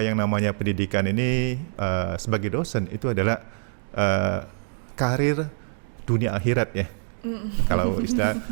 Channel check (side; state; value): left; silent; digital silence